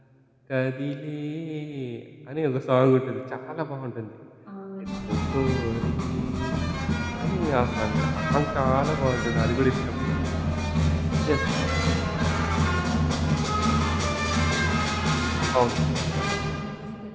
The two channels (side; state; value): both; identical; correlation 1.00